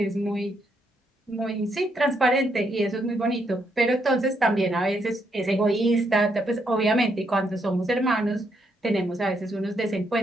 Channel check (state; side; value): normal; both; correlation 0.76